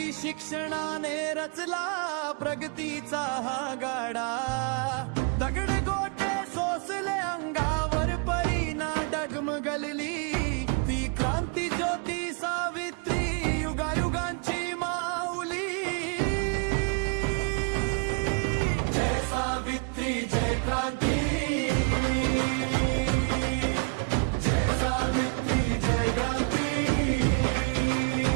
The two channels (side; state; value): left; quieter; 36.5 dB